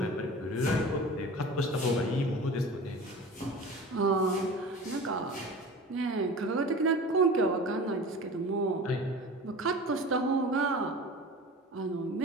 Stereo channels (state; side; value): normal; both; correlation 0.37